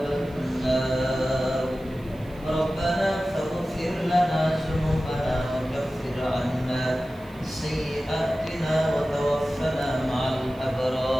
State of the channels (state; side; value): noise; right; hiss, 27 dB below the sound